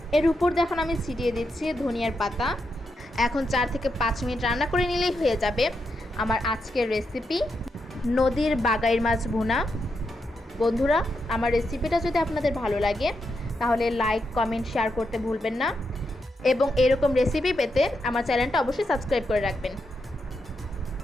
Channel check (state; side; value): normal; both; correlation 0.83